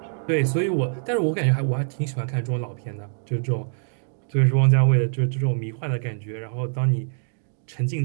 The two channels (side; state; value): left; silent; digital silence